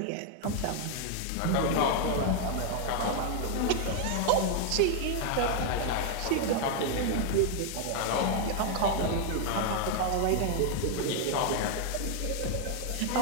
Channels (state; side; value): different; both; correlation 0.00